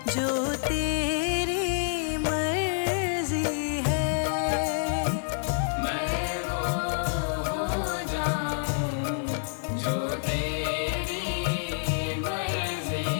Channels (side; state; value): right; silent; digital silence